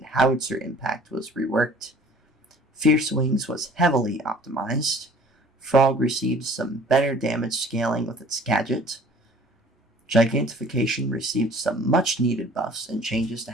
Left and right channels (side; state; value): both; normal; correlation 0.50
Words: howitzer impact was reworked. Fierce Wings was heavily optimized. Frog received some better damage scaling with its gadget. Gigantification received some much needed buffs and changes to